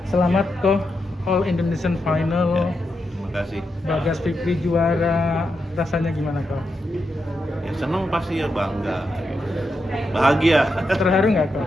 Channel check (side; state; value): both; normal; correlation 0.85